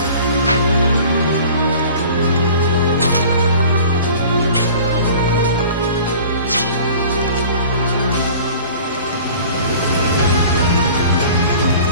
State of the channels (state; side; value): inverted; both; correlation -0.44